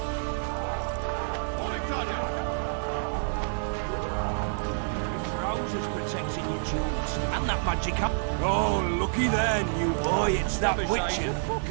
Oh, looky there, new boy, it's that Witcher.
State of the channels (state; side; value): silent; left; digital silence